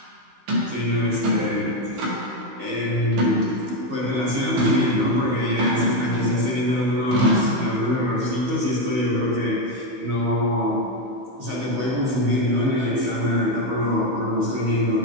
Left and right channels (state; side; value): late; left; 15 ms